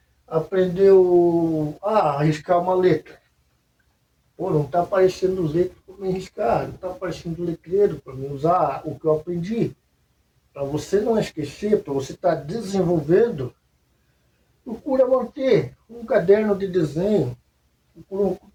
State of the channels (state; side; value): identical; both; correlation 1.00